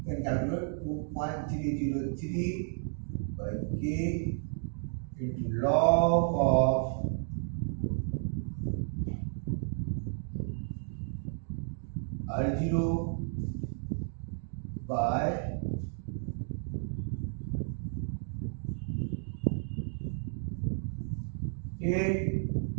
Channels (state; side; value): silent; left; 56 dB below the other